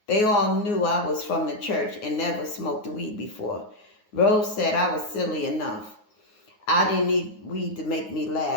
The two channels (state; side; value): late; right; 9.5 ms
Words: They all knew I was from the church and never smoked weed before. Rose said I was silly enough. I didn't need weed to make me